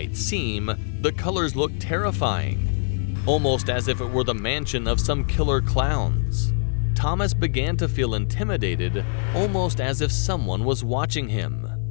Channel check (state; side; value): silent; right; 63 dB below the other